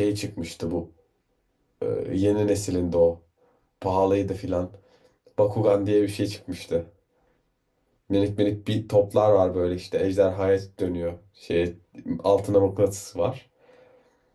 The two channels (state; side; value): identical; both; correlation 1.00